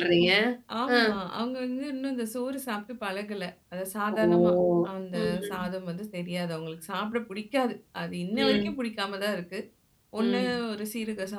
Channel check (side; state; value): both; identical; correlation 1.00